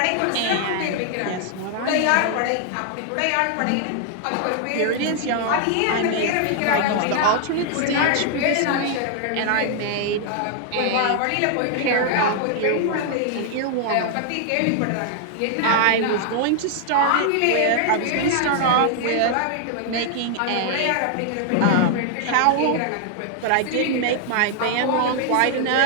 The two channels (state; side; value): different; both; correlation 0.00